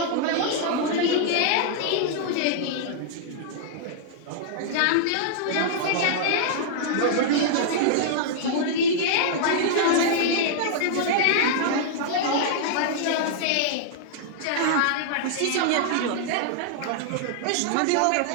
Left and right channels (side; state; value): both; different; correlation -0.01